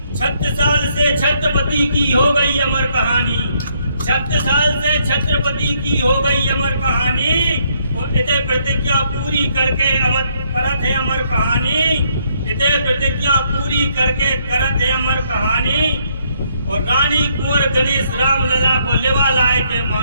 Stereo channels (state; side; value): inverted; both; correlation -0.71